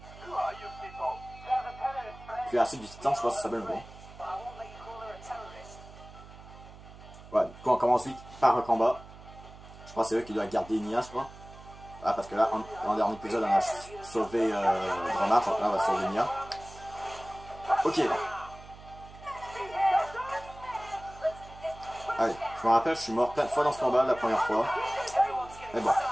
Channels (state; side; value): noise; right; hum, 18 dB below the sound